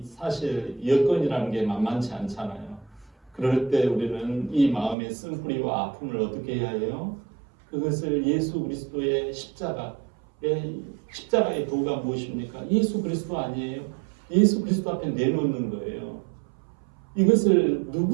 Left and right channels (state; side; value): drops out; left; at 5.0 s